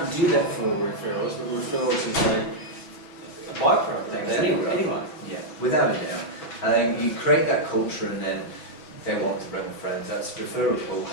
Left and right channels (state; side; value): late; right; 6.2 ms